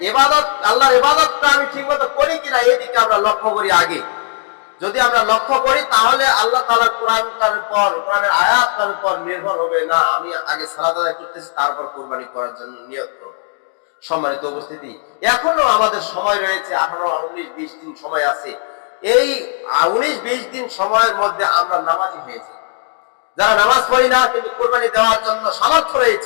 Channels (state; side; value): silent; right; 65 dB below the other